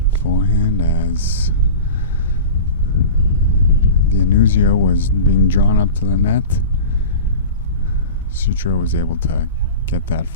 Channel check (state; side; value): inverted; both; correlation -0.32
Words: forehand as the Anuzio was being drawn up to the net. Sutro was able to get that